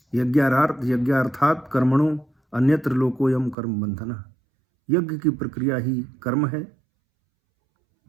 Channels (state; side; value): drops out; left; at 3.6 s